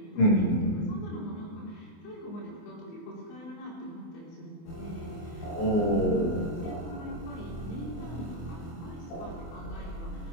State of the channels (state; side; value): late; right; 24 ms